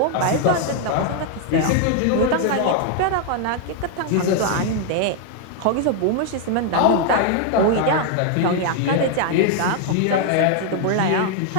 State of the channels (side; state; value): both; different; correlation 0.00